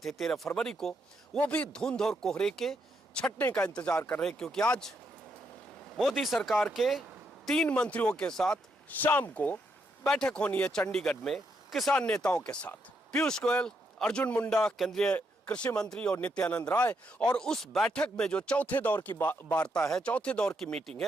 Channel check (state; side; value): normal; both; correlation 0.78